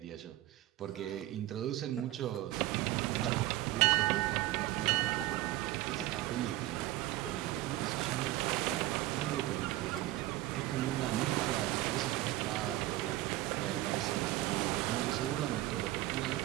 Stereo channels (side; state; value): left; quieter; 16.3 dB